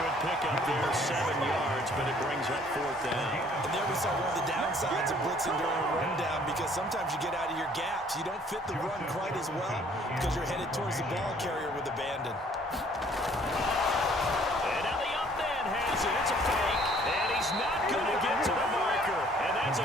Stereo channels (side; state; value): both; normal; correlation 0.58